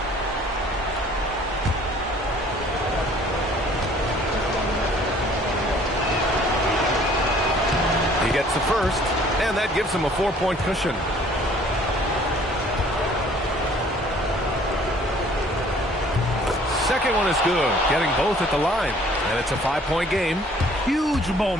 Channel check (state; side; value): normal; both; correlation 0.55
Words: He gets the first, and that gives him a 4-point cushion. Second one is good, getting both at the line, and it's a 5-point game. Huge